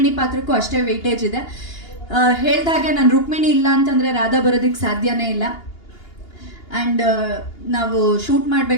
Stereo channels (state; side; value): late; right; 2.8 ms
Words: ಪಾತ್ರಕ್ಕೂ ಅಷ್ಟೇ ವೆಯ್ಟೇಜ್ ಇದೆ. ಹೇಳ್ದಾಗೆ ನಾನು ರುಕ್ಮಿಣಿ ಇಲ್ಲ ಅಂತಂದರೆ ರಾಧಾ ಬರೋದಕ್ಕೆ ಸಾಧ್ಯನೇ ಇಲ್ಲ. ಆ್ಯಂಡ್ ನಾವು ಶೂಟ್